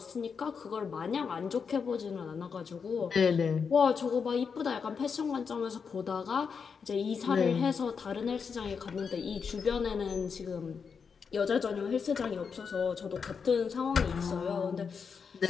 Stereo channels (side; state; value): right; quieter; 5.9 dB